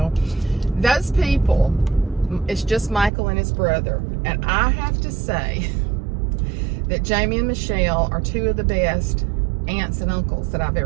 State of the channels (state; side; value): drops out; left; at 3.1 s